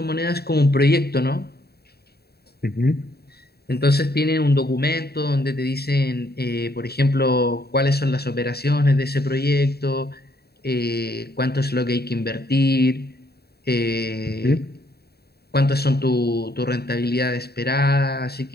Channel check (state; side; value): late; right; 0.46 ms